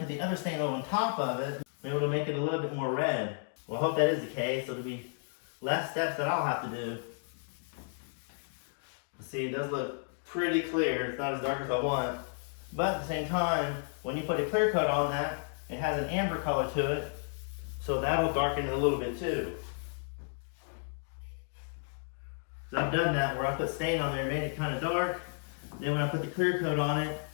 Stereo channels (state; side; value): silent; right; 56 dB below the other